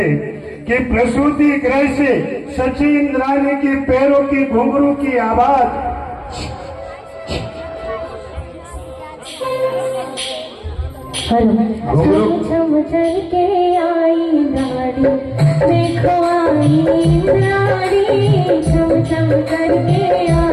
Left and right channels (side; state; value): both; identical; correlation 1.00